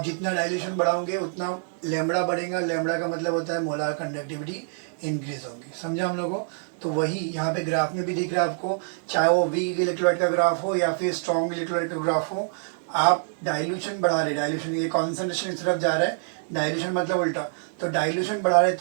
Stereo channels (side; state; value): left; silent; digital silence